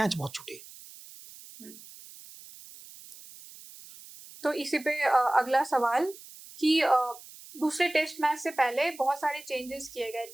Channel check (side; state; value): right; noise; hiss, 18 dB below the sound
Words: बहुत छूटे। तो इसी पे अगला सवाल कि दूसरे टेस्ट मैच से पहले बहुत सारे चेंजेस किए गए